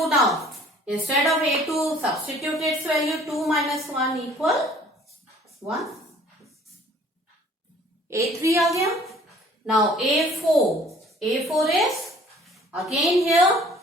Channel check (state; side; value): normal; both; correlation 0.54